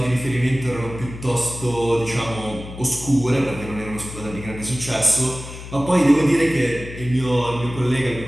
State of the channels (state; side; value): noise; left; hum, 12 dB below the sound